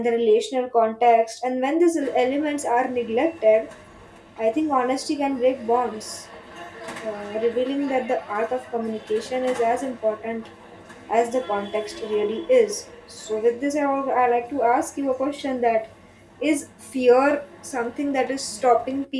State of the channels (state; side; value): identical; both; correlation 1.00